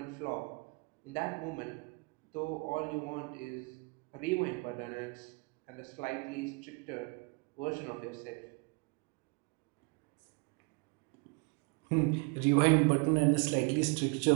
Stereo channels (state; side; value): quieter; left; 31.2 dB